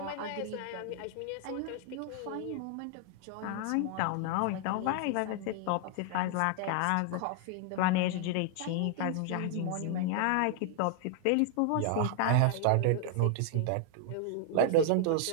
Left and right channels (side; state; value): both; different; correlation 0.00